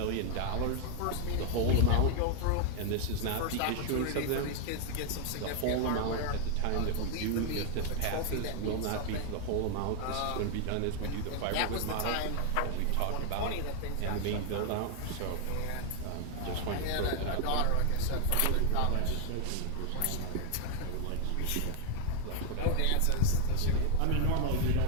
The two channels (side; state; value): both; different; correlation 0.00